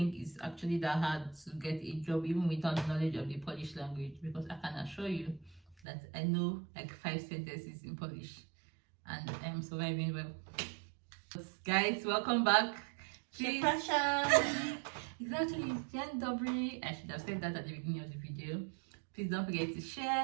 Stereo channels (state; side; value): drops out; left; at 5.8 s